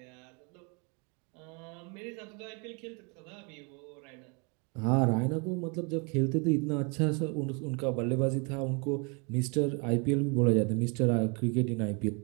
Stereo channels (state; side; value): quieter; left; 33.1 dB